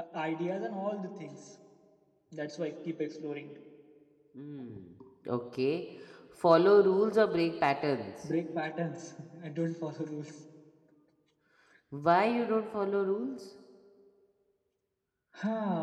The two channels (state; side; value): identical; both; correlation 1.00